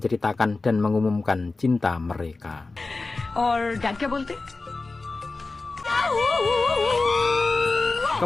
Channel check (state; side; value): quieter; right; 3.6 dB